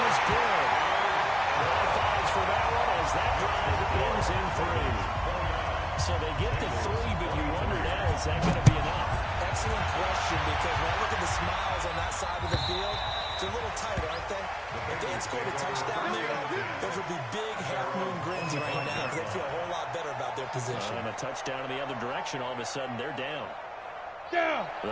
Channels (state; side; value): identical; both; correlation 1.00